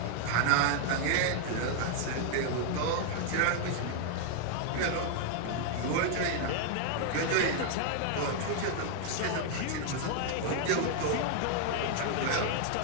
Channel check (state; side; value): different; both; correlation 0.00